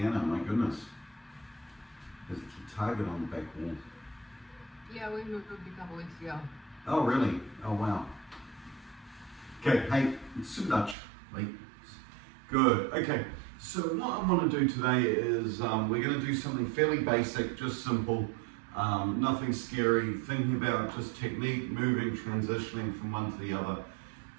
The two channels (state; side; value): drops out; left; at 11.0 s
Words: my goodness. There's a target on the back wall. Yeah, we moved a couple weeks ago. Oh, really? Oh, wow. Okay, hey, sit Dutch, wait. Good, okay. So what I want to do today is we're going to do something fairly basic, just simple, nothing scary, thinking about just technique, moving, transitioning from one to the other.